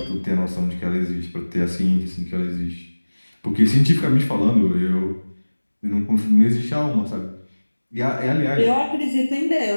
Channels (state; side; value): inverted; both; correlation -1.00